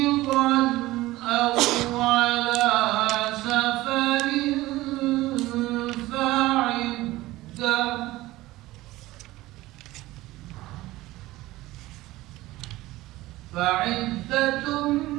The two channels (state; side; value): quieter; left; 18.0 dB